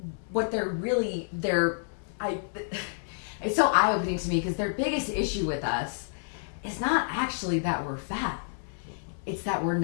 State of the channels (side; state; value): right; silent; 58 dB below the other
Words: so eye-opening to me because their biggest issue with us is not actually that we're fat. It's that we're